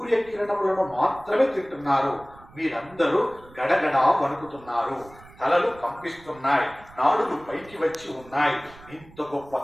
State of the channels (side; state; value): right; noise; rumble, 23 dB below the sound